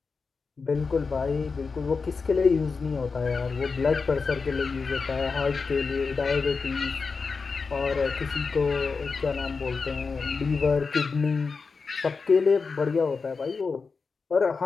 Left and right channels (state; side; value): quieter; right; 4.7 dB